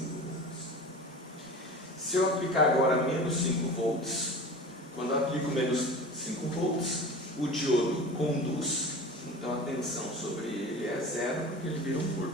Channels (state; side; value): normal; both; correlation 0.36